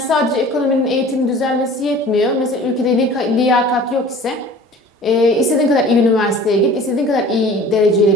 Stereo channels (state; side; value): normal; both; correlation 0.45